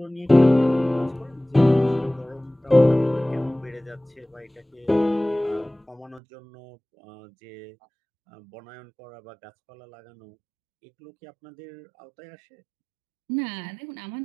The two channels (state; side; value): drops out; left; at 6.2 s